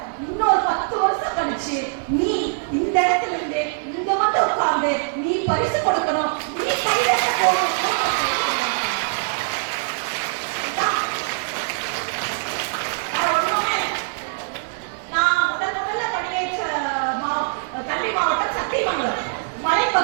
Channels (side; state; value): left; silent; digital silence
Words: இன்னொரு 10 வருஷம் கழிச்சு நீ இந்த இடத்துல இருந்து இங்க மட்டும் உட்கார்ந்து நீ பரிசு கொடுக்கணும், நீ கை தட்ட போகணும். நான் முதல்ல படியேற்ற கல்வி மாவட்டம் சத்தியமங்கலம்